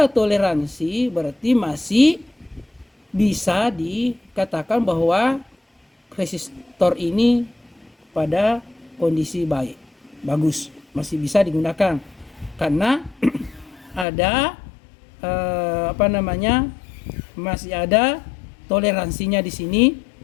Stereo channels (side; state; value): right; drops out; at 14.1 s